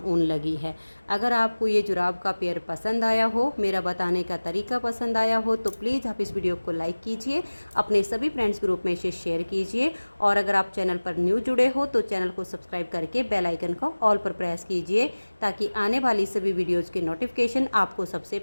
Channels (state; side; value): inverted; both; correlation -1.00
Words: ऊन लगी है। अगर आपको ये जुराब का पेयर पसंद आया हो, मेरा बताने का तरीका पसंद आया हो, तो प्लीज़ आप इस वीडियो को लाइक कीजिए, अपने सभी फ्रेंड्स ग्रुप में इसे शेयर कीजिए और अगर आप चैनल पर न्यू जुड़े हो तो चैनल को सब्सक्राइब करके बेल आइकन को ऑल पर प्रेस कीजिए, ताकि आने वाली सभी वीडियोज़ के नोटिफिकेशन आपको सबसे